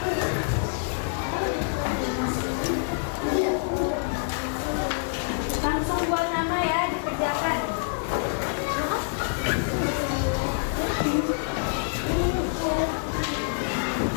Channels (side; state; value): right; silent; 61 dB below the other